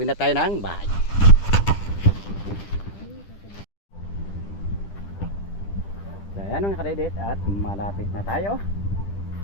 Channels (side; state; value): right; late; 10 ms